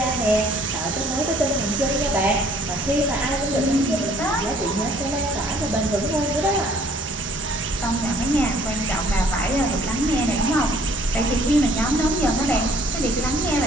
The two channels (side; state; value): both; normal; correlation 0.58